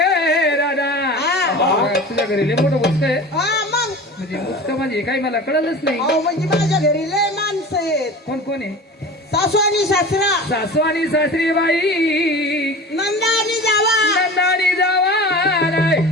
राधा हा. तुझ्या घरी लय मोठं बुचक आहे हा मग म्हणजे बुचक म्हणजे काही मला कळलंच नाही अहो म्हणजे माझ्या घरी लय माणसं आहेत कोण कोण आहे सासू आणि सासरा सासू आणि सासरी बाई नंदा आणि जावा नंदानी जावा नाही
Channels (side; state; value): both; normal; correlation 0.35